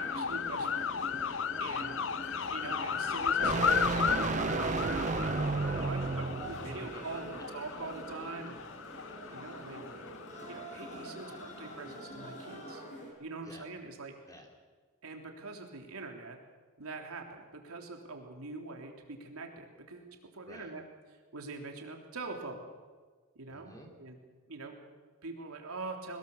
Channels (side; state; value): both; normal; correlation 0.32